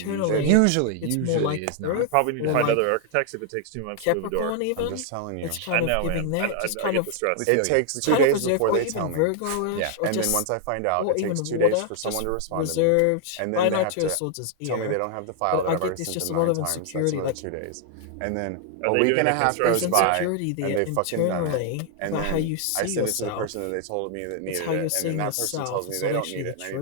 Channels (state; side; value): different; both; correlation 0.00